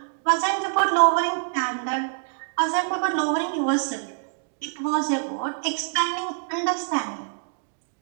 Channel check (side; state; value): left; silent; 62 dB below the other